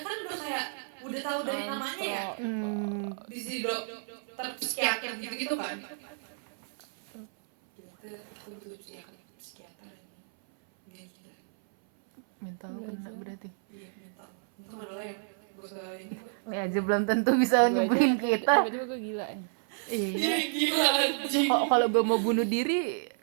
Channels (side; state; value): left; silent; 57 dB below the other